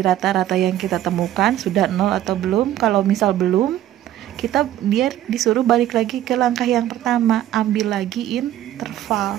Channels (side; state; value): left; quieter; 12.7 dB